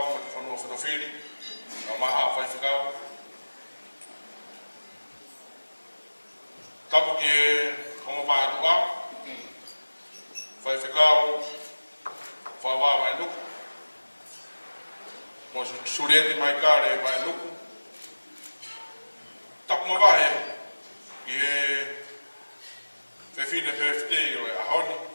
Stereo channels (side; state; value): both; inverted; correlation -1.00